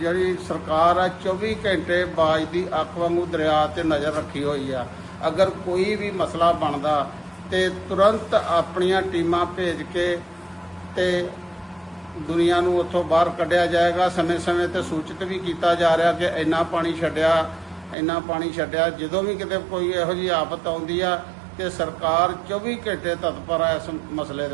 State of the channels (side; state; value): left; drops out; at 17.9 s